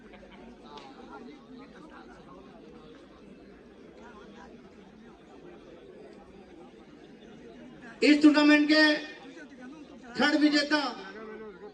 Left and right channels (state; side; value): identical; both; correlation 1.00